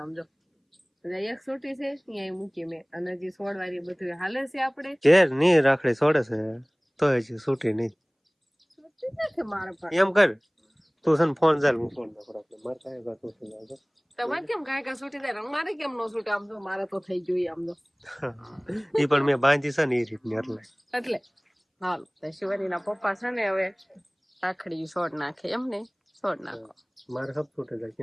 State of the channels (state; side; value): identical; both; correlation 1.00